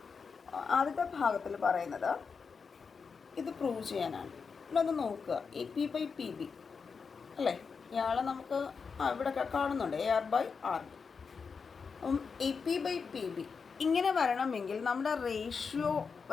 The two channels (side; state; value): right; quieter; 5.4 dB